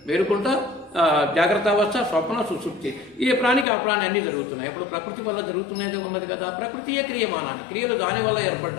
మేలుకుంటా జాగ్రత్త అవస్థ, స్వప్న, సుషుప్తి, ఏ ప్రాణికి ఆ ప్రాణి అన్నీ జరుగుతున్నాయి. ఇప్పుడు ప్రకృతి వల్ల జరుగుతున్నదే ఉన్నది కదా. ప్రకృతియే క్రియమానాన్ని, క్రియలు దాని వల్ల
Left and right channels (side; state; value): right; drops out; at 3.7 s